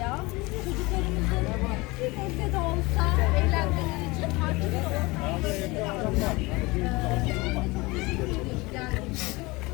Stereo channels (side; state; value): right; quieter; 23.5 dB